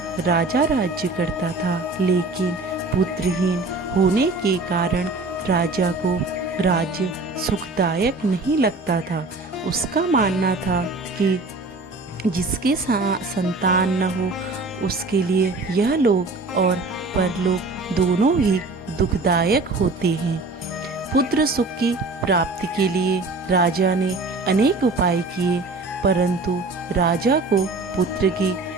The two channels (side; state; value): left; quieter; 3.4 dB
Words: राजा राज्य करता था। लेकिन पुत्रहीन होने के कारण राजा को राज्य सुखदायक नहीं लगता था। उसका मानना था कि जिसके संतान न हो उसके लिए यह लोक और परलोक दोनों ही दुखदायक होते हैं। पुत्र सुख की प्राप्ति के लिए राजा ने अनेक उपाय किए, परंतु राजा को पुत्र की